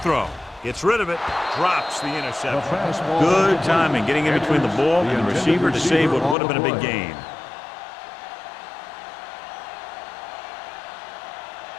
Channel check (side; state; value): right; drops out; at 6.4 s